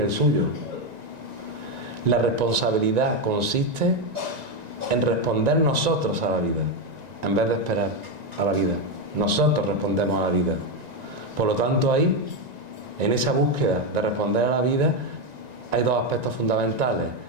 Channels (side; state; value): left; late; 1.9 ms